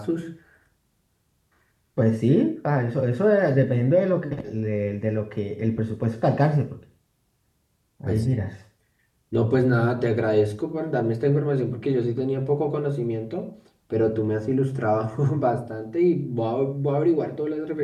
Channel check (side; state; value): both; identical; correlation 1.00